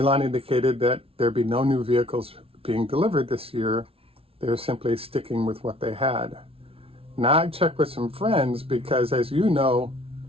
indicated that there'd be no new vehicles being delivered this year. They're simply sticking with what they had. Now I checked with some friends because, as you know,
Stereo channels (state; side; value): late; left; 0.27 ms